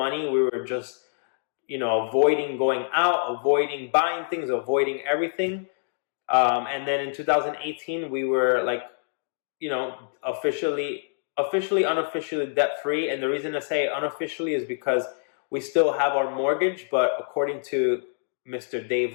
We were just, avoiding going out, avoiding buying things, avoiding everything. And then in 2018, we were like, officially, unofficially debt free. And the reason I say unofficially is because we still have our mortgage, but according to Mr.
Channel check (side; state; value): right; silent; digital silence